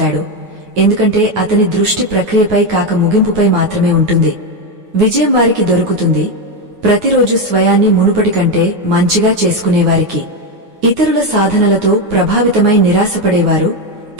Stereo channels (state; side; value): late; left; 9.5 ms